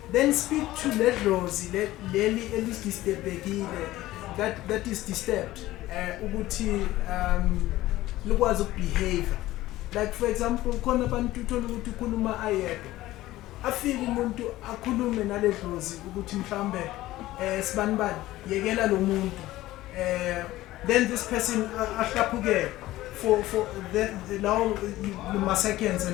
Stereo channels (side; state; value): right; quieter; 16.3 dB